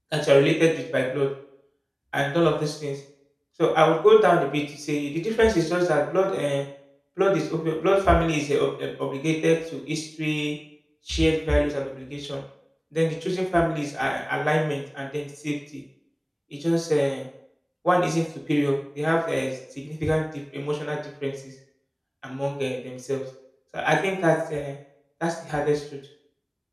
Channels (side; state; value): both; identical; correlation 1.00